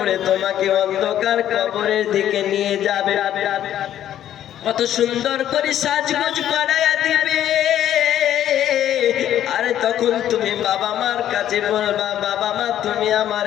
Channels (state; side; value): quieter; right; 11.3 dB